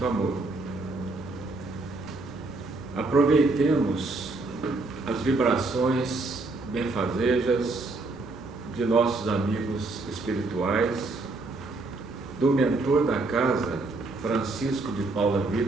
amor. Aproveitemos as vibrações benfazejas de nossos amigos espirituais, do mentor da casa, Francisco de Paula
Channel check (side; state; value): left; quieter; 3.3 dB